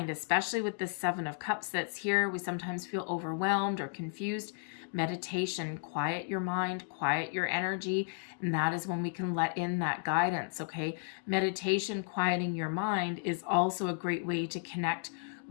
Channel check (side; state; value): right; silent; 55 dB below the other